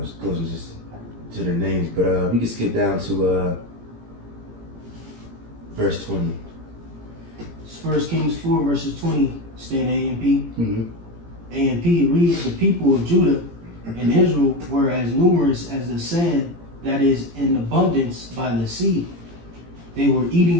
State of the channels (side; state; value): left; late; 17 ms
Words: it goes just to their names. But we can skip down to verse 20. It's 1 Kings 4 verses 20. Stay in A and P. Mm-hmm. A and P reads, the people of Judah and Israel were as numerous as the sand that is in abundance by the sea. They were